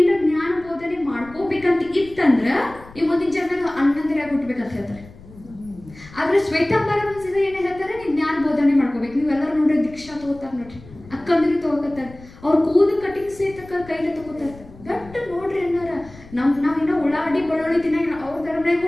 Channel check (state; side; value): noise; left; rumble, 20 dB below the sound